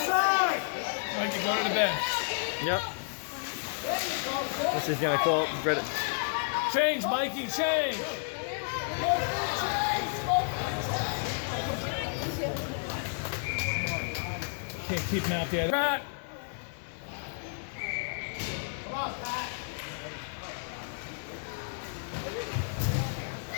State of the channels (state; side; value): silent; right; 57 dB below the other